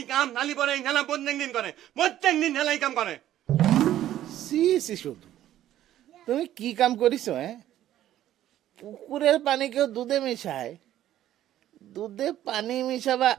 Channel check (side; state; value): left; quieter; 12.6 dB